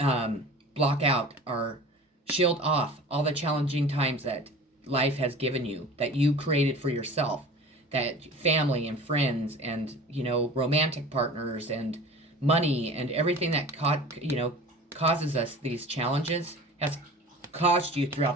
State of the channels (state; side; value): normal; both; correlation 0.40